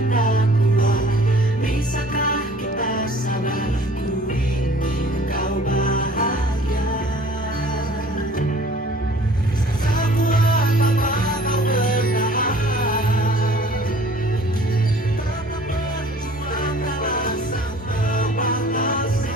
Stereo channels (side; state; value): both; normal; correlation 0.51